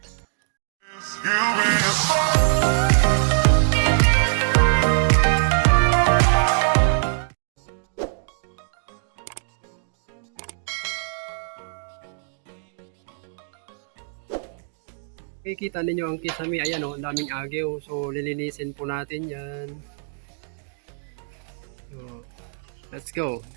Kikita ninyo ang kisame, ayan o, ang daming agyo. So lilinisin po natin yan. So, let's go.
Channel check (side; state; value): left; silent; digital silence